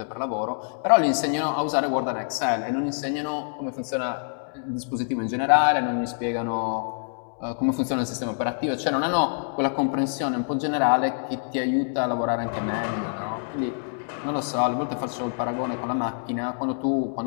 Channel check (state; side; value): silent; right; digital silence